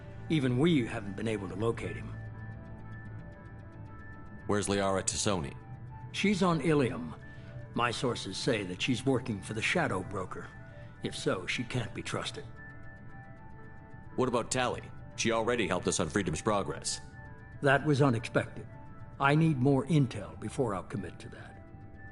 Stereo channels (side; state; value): both; identical; correlation 1.00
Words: Even we haven't been able to locate him. Where's Liara T'Soni? She's on Ilium. My sources say that she's working for the Shadow Broker. If so, she can't be trusted. What about Tali? She already helped us on Freedom's Progress. That was unexpected. I need more intel before I'll commit to that.